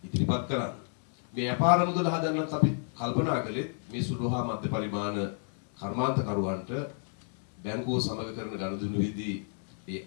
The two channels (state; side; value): silent; right; 57 dB below the other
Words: ඉදිරිපත් කරන්න. මේ අපාර මුදල හදන්නත් අපි කල්පනා කළේ මේ සුළු හා මධ්‍ය පරිමාණ කර්මාන්තකරුවන්ට බැංකුව සමග කරන ගනුදෙනුවේදී ඒ